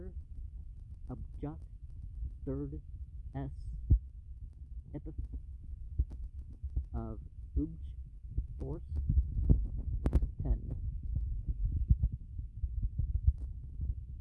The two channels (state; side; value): identical; both; correlation 1.00